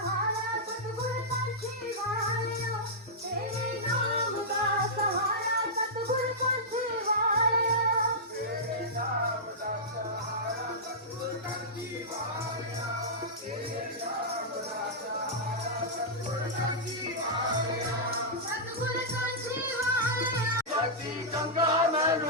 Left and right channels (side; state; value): both; normal; correlation -0.12